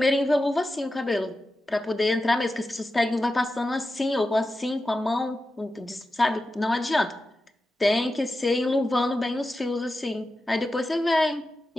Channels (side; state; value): both; normal; correlation 0.92